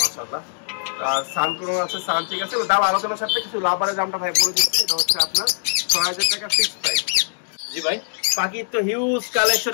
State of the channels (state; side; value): silent; right; digital silence